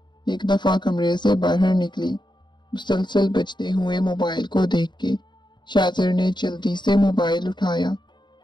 एक दफा कमरे से बाहर निकली। मुसलसल बजते हुए मोबाइल को देख के शाहजर ने जल्दी से मोबाइल उठाया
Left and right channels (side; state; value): right; late; 0.22 ms